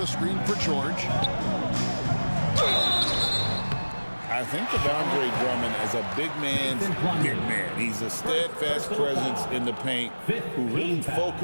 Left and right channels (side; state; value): both; inverted; correlation -1.00